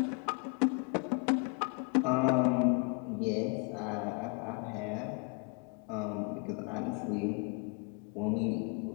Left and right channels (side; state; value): right; quieter; 33.7 dB